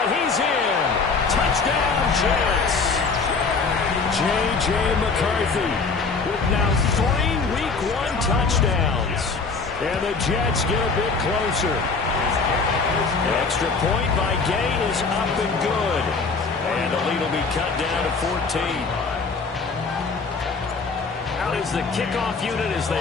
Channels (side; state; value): right; quieter; 4.5 dB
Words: he's in. Touchdown, Jets. J.J. McCarthy with now 3 Week 1 touchdowns. And the Jets get a bit closer. Extra point by Gain is up and good. And the lead will be cut down to 14. Out is the kickoff unit as